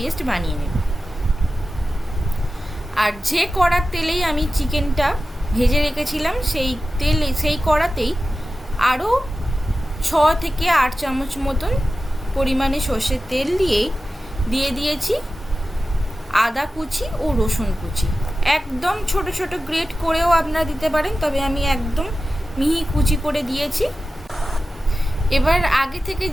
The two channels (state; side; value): normal; both; correlation 0.94